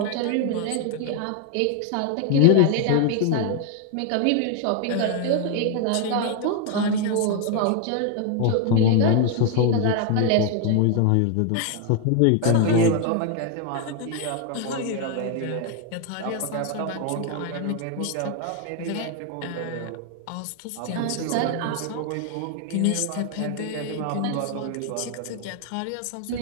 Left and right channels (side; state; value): both; different; correlation 0.01